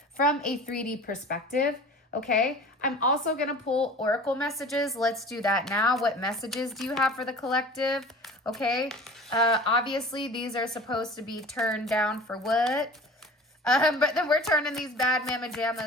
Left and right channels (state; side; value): normal; both; correlation 0.41